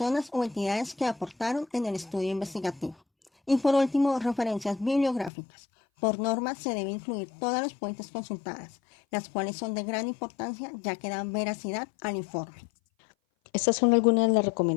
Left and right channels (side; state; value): right; drops out; at 5.3 s